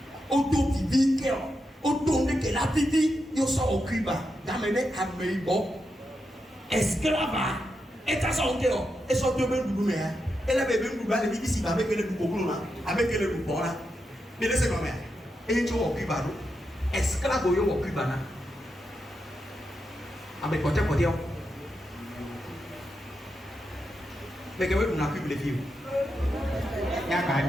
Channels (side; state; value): both; normal; correlation 0.86